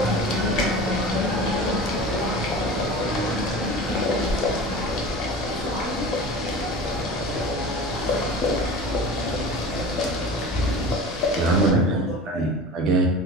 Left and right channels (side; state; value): both; normal; correlation 0.35